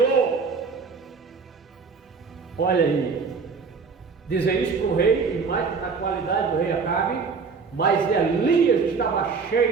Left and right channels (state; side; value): quieter; left; 5.1 dB